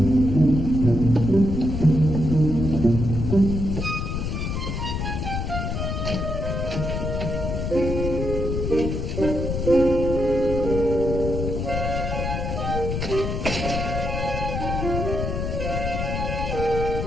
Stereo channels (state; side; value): noise; left; rumble, 2 dB below the sound